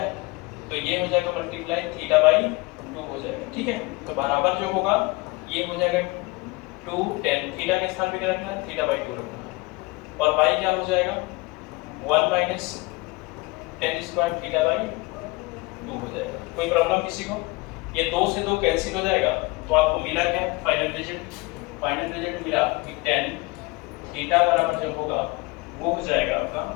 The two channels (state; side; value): quieter; right; 24.3 dB